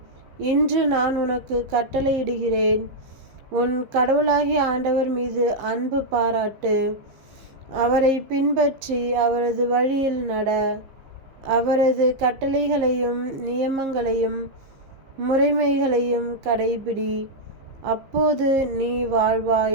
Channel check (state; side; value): late; left; 15 ms